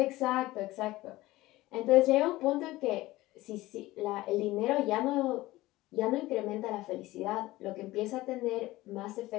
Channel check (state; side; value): quieter; right; 18.0 dB